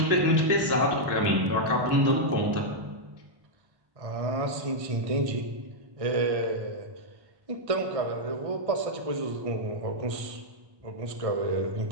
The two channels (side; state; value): left; late; 1.5 ms